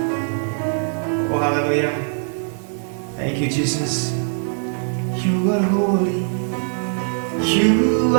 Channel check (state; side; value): silent; left; digital silence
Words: Oh haleluya. Thank you Jesus. You are holy. You